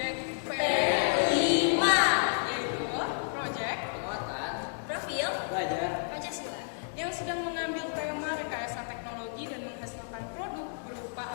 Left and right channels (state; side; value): silent; right; digital silence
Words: P5, yaitu proyek Penguatan, Profil belajar, Pancasila, yang sedang mengambil tema rekayasa teknologi dan menghasilkan produk berupa